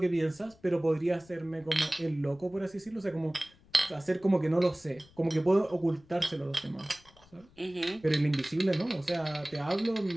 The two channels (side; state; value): left; noise; rumble, 27 dB below the sound